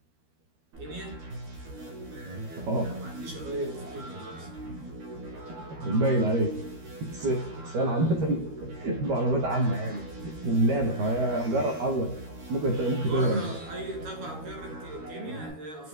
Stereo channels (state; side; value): late; left; 13 ms